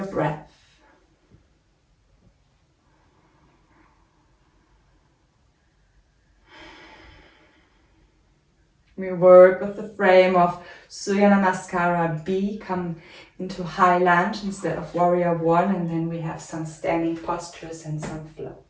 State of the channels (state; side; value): identical; both; correlation 1.00